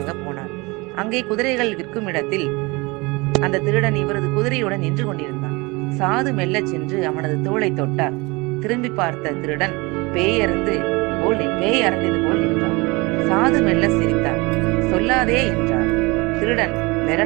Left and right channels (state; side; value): quieter; left; 25.2 dB